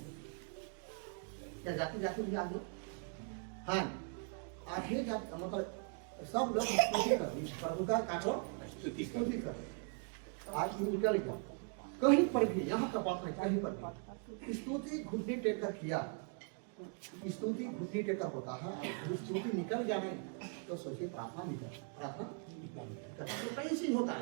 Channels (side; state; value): left; quieter; 40.0 dB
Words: क्या जाति जाति भी आ गया? हाँ आगे जाति मतलब सब लोग स्तुति करो, इस प्रभु का करो स्तुति करो। आज निकल गया कहीं पर भी, यहाँ का बात नहीं, कहीं पर भी स्तुति घुटने टेक कर किया, स्तुति घुटने टेक कर होता है, और स्तुति निकल गया नहीं तो सोचिए प्रार्थना नहीं कर, प्रार्थना तो कैसे होता